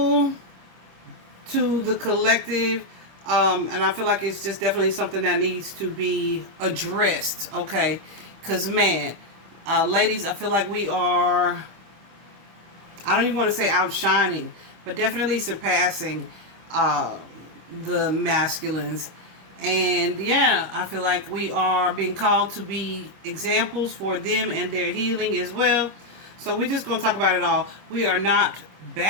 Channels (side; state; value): left; late; 25 ms